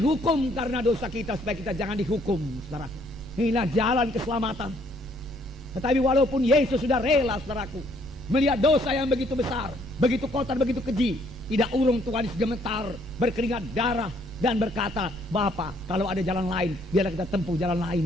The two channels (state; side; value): noise; right; rumble, 17 dB below the sound